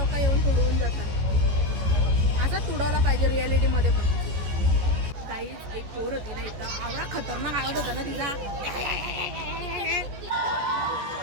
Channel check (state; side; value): late; left; 14 ms